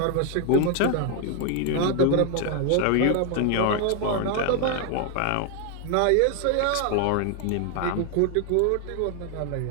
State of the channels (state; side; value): different; both; correlation 0.00